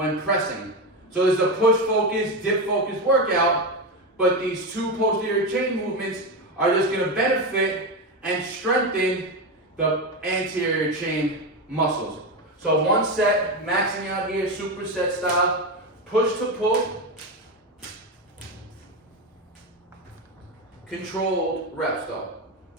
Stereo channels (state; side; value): normal; both; correlation 0.14